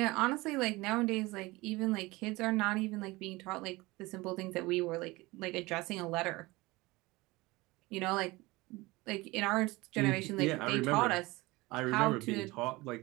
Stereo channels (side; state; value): left; quieter; 21.8 dB